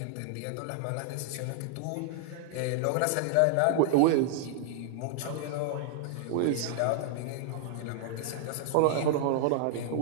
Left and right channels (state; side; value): different; both; correlation 0.00